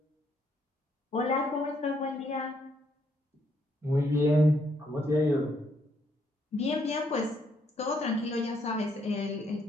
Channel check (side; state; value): both; normal; correlation 0.72